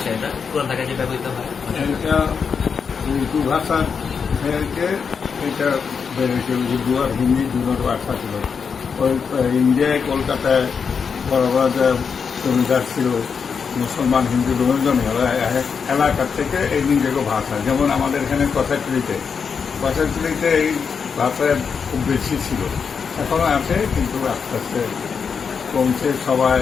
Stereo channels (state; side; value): quieter; right; 6.1 dB